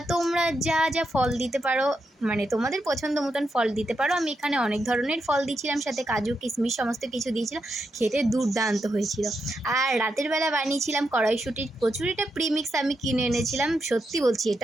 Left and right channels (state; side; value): normal; both; correlation 0.84